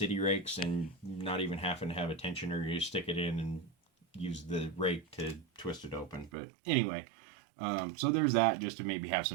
rakes and not even having to have a tensioner. You stick it in and use the rake to twist it open. But anyway, so there's that, just to maybe have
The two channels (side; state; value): left; drops out; at 6.3 s